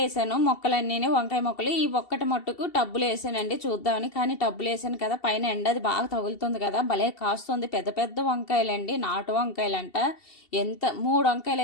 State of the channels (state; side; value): late; right; 2.7 ms